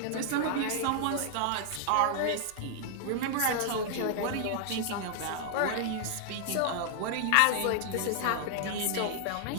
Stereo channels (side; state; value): both; different; correlation 0.00